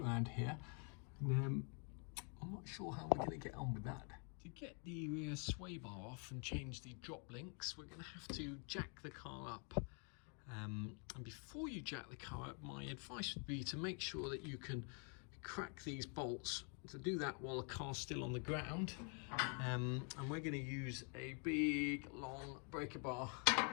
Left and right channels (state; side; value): quieter; right; 39.3 dB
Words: around here, and I'm not sure how we're going to get on with that. To get the rear sway bar off and change the drop links, we're going to have to jack the car up. And before you jack the car up, my advice would be to make sure that you can crack these bolts. To do that while the car's still on the ground, and we're going to use a big long breaker bar